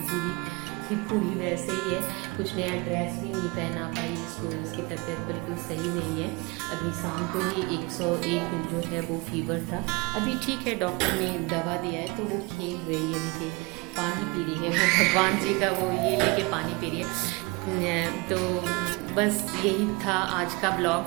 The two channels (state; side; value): quieter; left; 26.4 dB